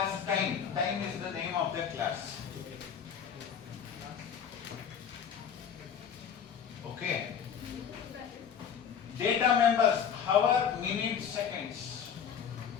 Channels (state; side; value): quieter; right; 7.7 dB